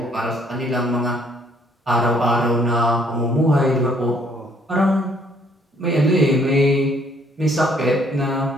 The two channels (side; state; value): both; normal; correlation 0.64